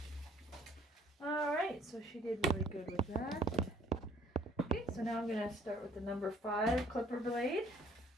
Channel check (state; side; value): normal; both; correlation 0.59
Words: Alright, so she did really good with that. Okay, so now I'm going to start with the number 5 clipper blade.